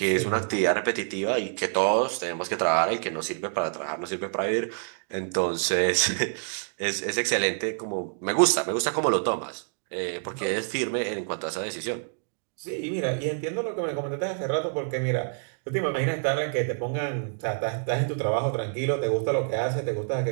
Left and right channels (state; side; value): silent; left; digital silence